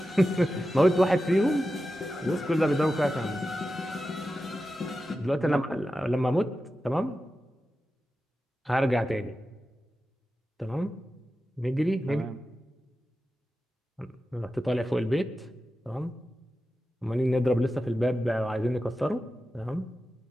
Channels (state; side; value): normal; both; correlation 0.92